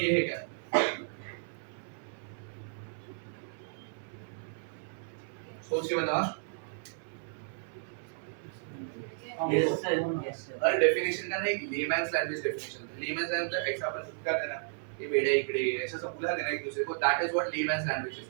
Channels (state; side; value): silent; left; 56 dB below the other